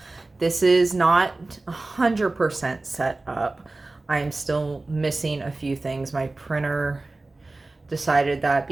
this is not 100% set up. I'm still missing a few things. My printer decided that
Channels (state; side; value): quieter; left; 3.1 dB